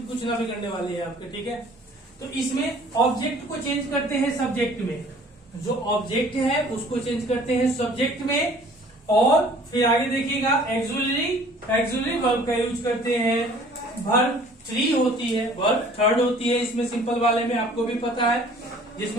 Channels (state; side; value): normal; both; correlation 0.52